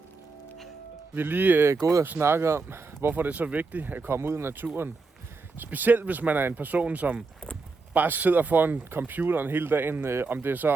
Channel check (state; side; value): quieter; left; 4.0 dB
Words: Vi er lige gået og snakket om, hvorfor det er så vigtigt at komme ud i naturen. Specielt hvis man er en person, som bare sidder foran computeren hele dagen, om det er så